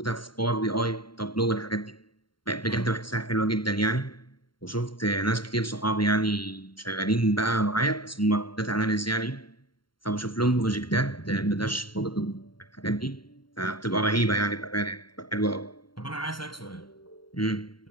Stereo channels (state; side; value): late; right; 0.73 ms